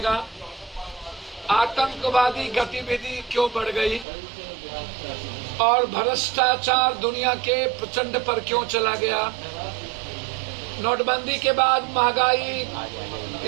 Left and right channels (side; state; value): left; drops out; at 4.0 s